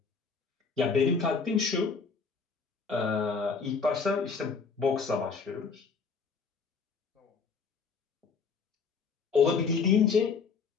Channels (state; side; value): quieter; right; 5.2 dB